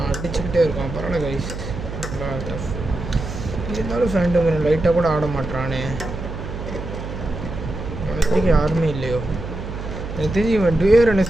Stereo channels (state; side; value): noise; right; hum, 8 dB below the sound